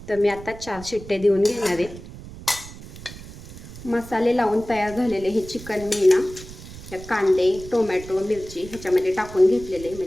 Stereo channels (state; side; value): noise; right; rumble, 15 dB below the sound